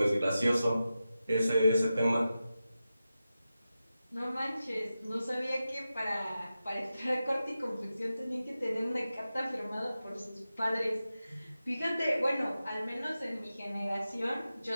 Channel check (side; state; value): both; inverted; correlation -0.93